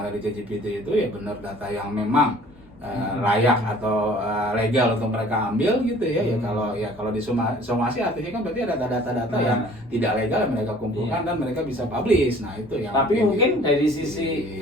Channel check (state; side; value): normal; both; correlation 0.51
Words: ada di ChatGPT itu ya benar data yang memang layak atau legal untuk mereka ambil gitu ya. Ya kalau disomasi artinya kan berarti ada data-data yang tidak legal yang mereka kumpulkan dan mereka bisa publish. Nah, itu yang Tapi mungkin dari sisi